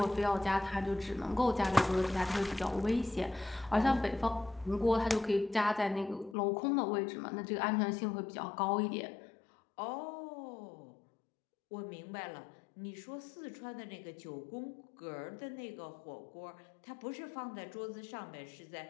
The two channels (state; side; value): drops out; right; at 6.4 s